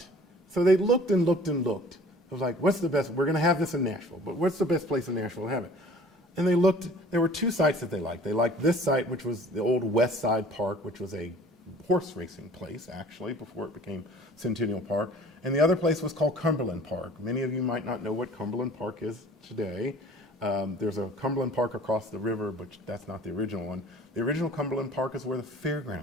So they looked and looked and looked. It was like, what's the best? We're going to have this in Nashville, but what's the best place in Nashville to have it? And they looked, there were two sites that they liked. They liked this site, which was the old West Side Park, which was a horse racing place, actually, before it became Centennial Park. And the other place was called Cumberland Park. Many of you might not know what Cumberland Park is today. There's a Cumberland Park across the river, but that's not the original one. The original Cumberland Park is where the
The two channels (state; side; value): normal; both; correlation 0.49